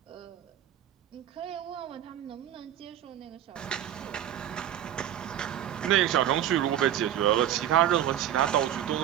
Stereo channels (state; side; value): quieter; left; 11.0 dB